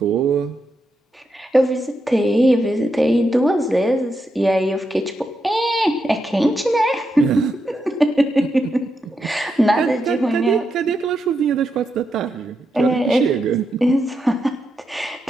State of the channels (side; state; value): both; normal; correlation 0.84